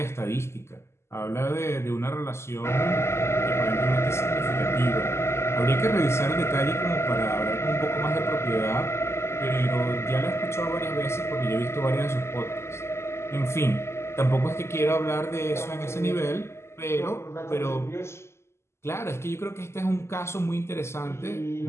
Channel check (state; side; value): late; right; 0.13 ms